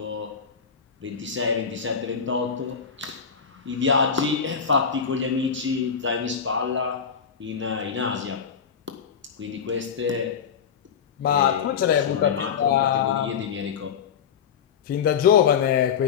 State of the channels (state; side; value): quieter; right; 7.0 dB